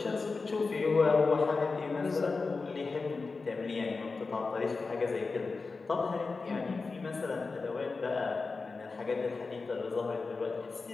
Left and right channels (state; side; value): quieter; right; 4.1 dB